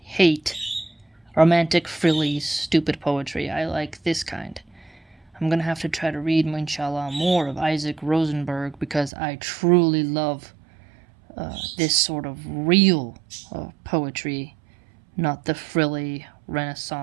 hate romantic, frilly, stupid poetry. I like this kind. I'm going to have to try to read, inshallah, more of Isaac Rosenberg because I truly love this sort of real poetry, not the frilly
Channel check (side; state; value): left; drops out; at 9.1 s